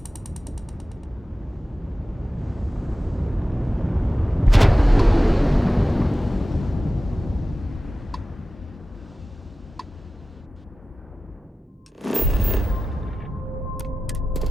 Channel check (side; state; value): both; normal; correlation 0.95